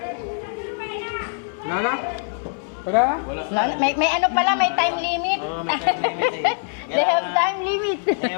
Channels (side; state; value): right; silent; 58 dB below the other